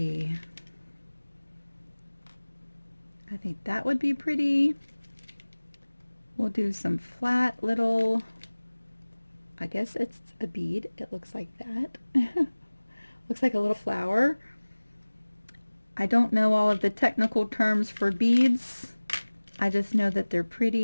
I think that would be pretty. We'll do some flat little, I guess it's a bead. It looks like that. Looks like a little flower. I don't know all of the technical terms for beads. I just know that they're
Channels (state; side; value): inverted; both; correlation -1.00